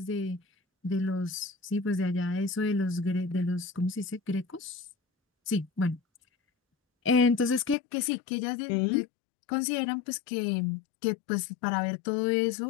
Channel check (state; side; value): drops out; right; at 7.8 s